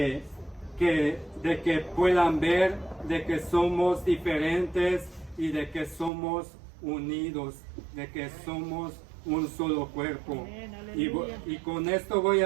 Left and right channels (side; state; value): left; drops out; at 6.1 s